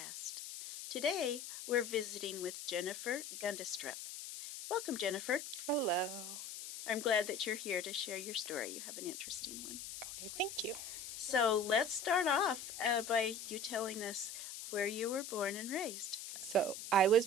Today, we're visiting with Jennifer Gundestrup. Welcome, Jennifer. Hello. I'm glad that you're here to share your story. You have an interesting one. Okay, thank you. So let's start off by you telling us where you were born and raised. So, I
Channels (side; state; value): left; noise; hiss, 9 dB below the sound